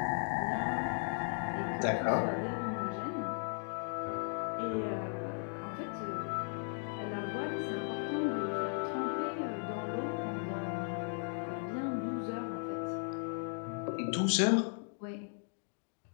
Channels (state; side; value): silent; right; 53 dB below the other